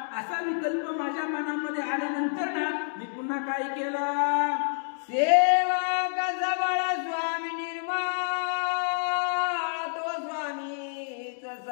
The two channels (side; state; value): right; silent; digital silence